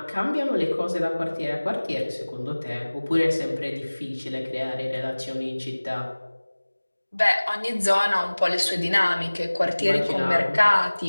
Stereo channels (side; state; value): both; inverted; correlation -1.00